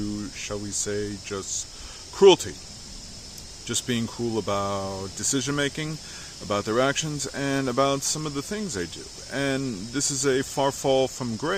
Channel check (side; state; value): both; identical; correlation 1.00